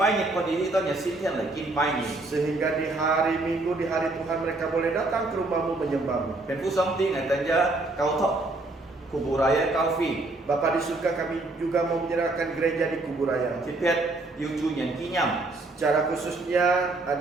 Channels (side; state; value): left; quieter; 3.0 dB